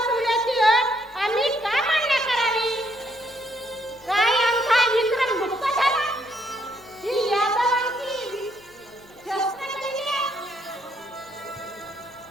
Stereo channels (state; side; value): noise; left; hum, 27 dB below the sound